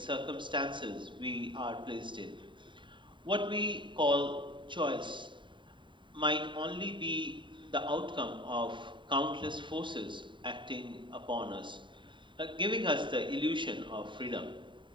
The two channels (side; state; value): left; late; 0.23 ms